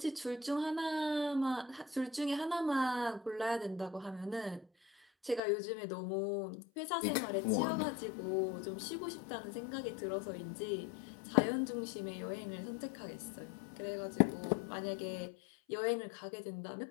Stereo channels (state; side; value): drops out; right; at 5.4 s